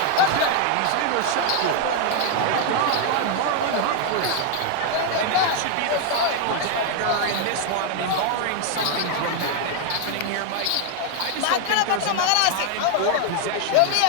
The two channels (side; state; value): both; different; correlation 0.00